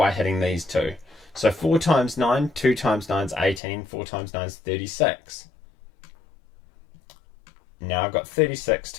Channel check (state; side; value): drops out; right; at 3.6 s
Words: hitting these two. So 4 times 9, 2 times 9 is 18, 4 times 9 is 36. Now I've got 36